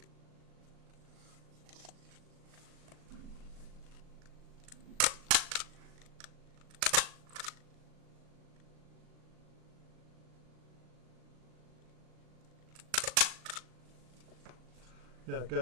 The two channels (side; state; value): left; late; 38 ms